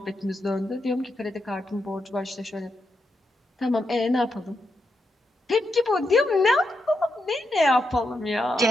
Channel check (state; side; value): normal; both; correlation 0.84